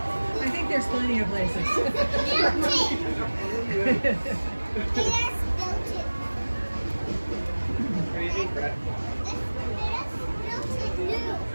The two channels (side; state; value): both; inverted; correlation -1.00